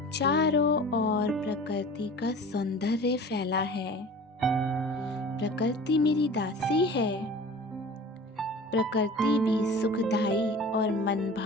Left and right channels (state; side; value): normal; both; correlation 0.41